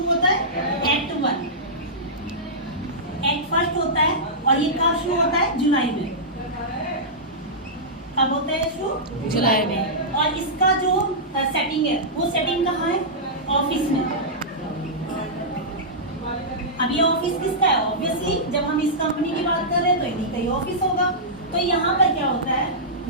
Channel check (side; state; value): both; normal; correlation -0.14